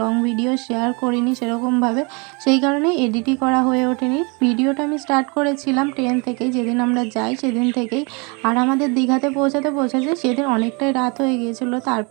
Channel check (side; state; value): left; quieter; 30.9 dB